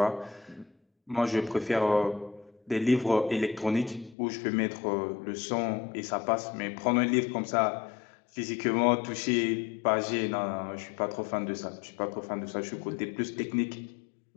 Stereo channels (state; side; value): drops out; right; at 4.2 s